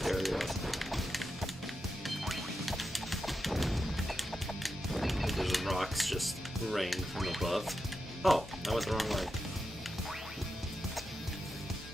area. Those rocks just rain from above. Oh, I went the wrong way.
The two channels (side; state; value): both; normal; correlation 0.89